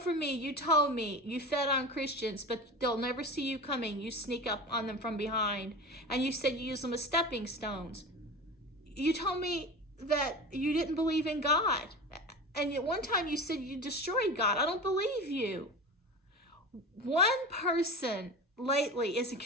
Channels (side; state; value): both; normal; correlation 0.30